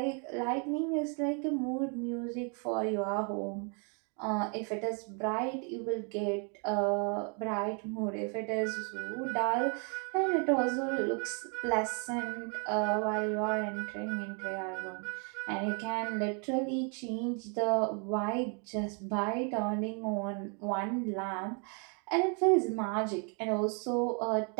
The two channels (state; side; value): quieter; left; 38.4 dB